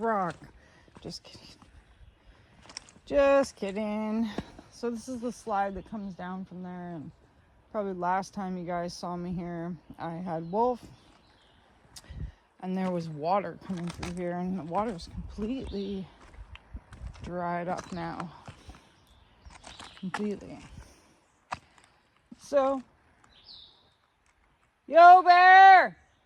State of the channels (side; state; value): both; identical; correlation 1.00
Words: Just kidding. So this is the slide that comes down from there. And probably last time you guys saw me here, I had Wolf. And there was water coming through here. And the water's completely dried up now. Completely. So, yo, Bear!